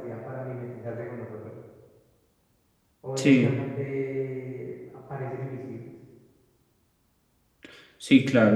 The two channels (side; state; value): both; identical; correlation 1.00